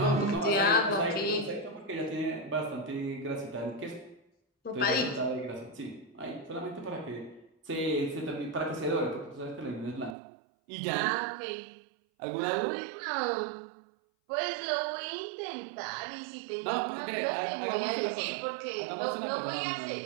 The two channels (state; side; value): drops out; left; at 10.2 s